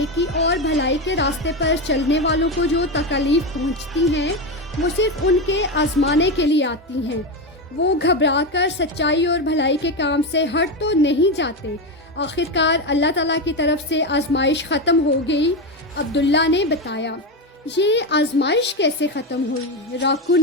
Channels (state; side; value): normal; both; correlation 0.14